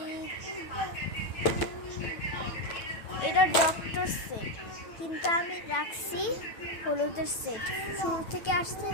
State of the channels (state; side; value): late; right; 9.0 ms